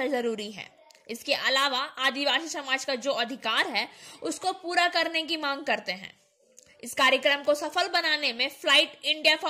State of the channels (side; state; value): both; identical; correlation 1.00